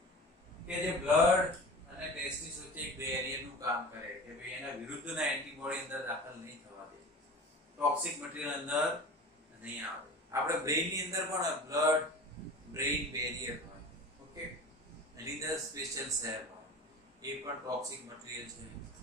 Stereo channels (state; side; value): normal; both; correlation 0.36